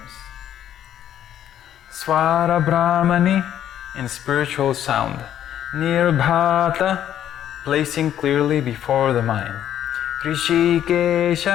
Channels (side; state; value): right; quieter; 10.7 dB